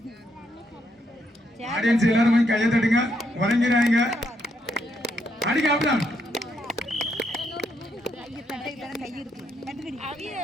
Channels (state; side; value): normal; both; correlation 0.77